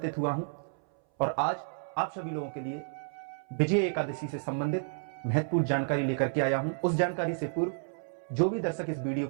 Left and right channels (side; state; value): left; silent; 57 dB below the other